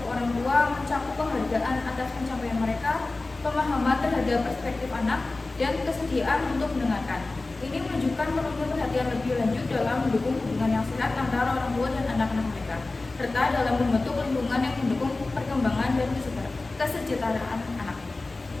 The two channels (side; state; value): right; quieter; 3.3 dB